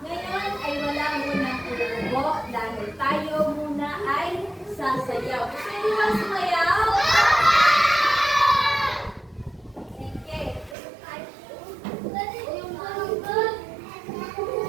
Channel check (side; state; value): left; drops out; at 10.8 s